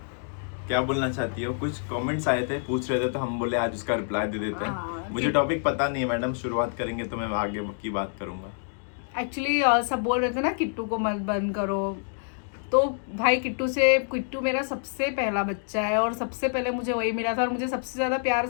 क्या बोलना चाहती हो? कुछ कमेंट्स आए थे, पूछ रहे थे, तो हम बोले आज उसका रिप्लाई दे देते हैं। मुझे टॉपिक पता नहीं है मैडम, शुरुआत करेंगे तो मैं आगे की बात करूंगा। एक्चुअली सब बोल रहे थे ना किट्टू को मत बंद करो, तो भाई किट्टू मेरा सबसे पहला बच्चा है और सबसे पहले मुझे वही मिला था और मुझे सबसे ज़्यादा प्यार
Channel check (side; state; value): right; silent; digital silence